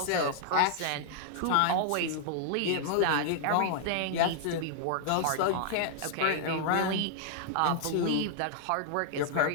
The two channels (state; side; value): different; both; correlation -0.01